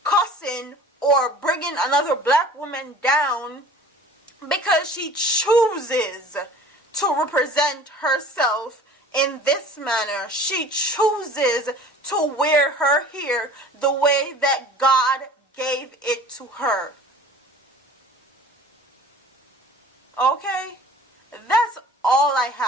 cussing or bringing another black woman down because she chooses to represent herself in this manner. She chooses to wear her hair the way that God gave it to her. Okay? That's all I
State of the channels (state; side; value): normal; both; correlation 0.44